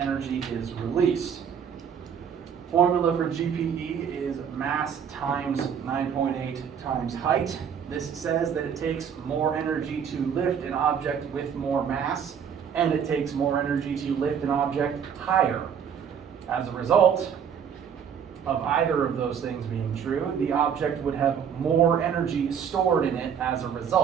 energy is released. Formula for GPE is mass times 9.8 times height. This says that it takes more energy to lift an object with more mass, and it takes more energy to lift an object higher. As a result of either of those things being true, the object would have more energy stored in it as a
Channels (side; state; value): left; quieter; 7.7 dB